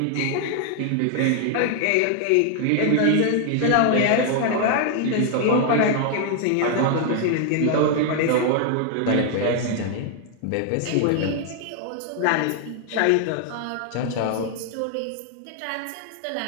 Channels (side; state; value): both; different; correlation 0.00